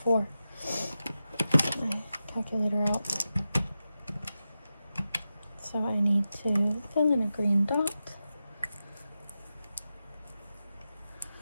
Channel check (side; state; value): both; inverted; correlation -0.91